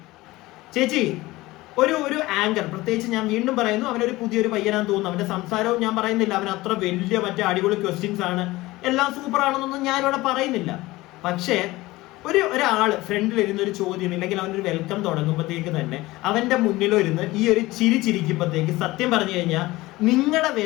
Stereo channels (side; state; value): right; quieter; 19.3 dB